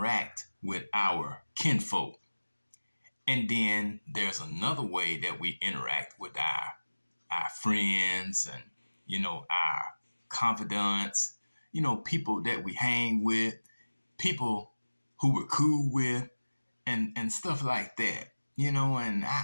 with our kinfolk. And then there's another way that we interact with our friends and our confidants, people that we hang with, people who we're cool with, and stuff like that.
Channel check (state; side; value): inverted; both; correlation -1.00